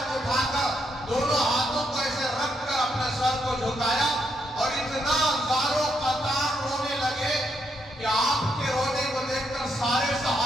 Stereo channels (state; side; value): normal; both; correlation 0.78